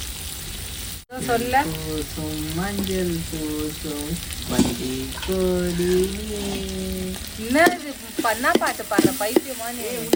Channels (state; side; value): identical; both; correlation 1.00